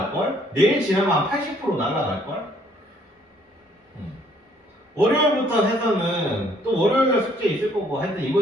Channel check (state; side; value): normal; both; correlation 0.64